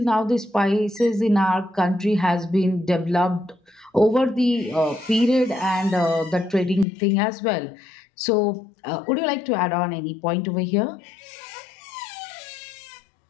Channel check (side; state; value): right; drops out; at 6.9 s